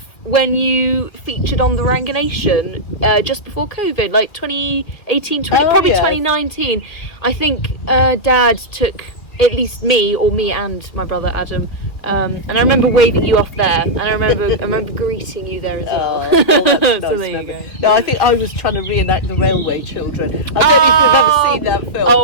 when you featured on the Ranganation just before COVID, like 2018, probably 2019. I think Dad took at least me and my brother Adam, and I remember waving you off there, and I remember greeting you there as well. Oh, that's nice So there you memory. go. No, I think I was trying to reenact the Railway Children. I don't know if you've ever seen that film.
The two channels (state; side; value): late; right; 2.4 ms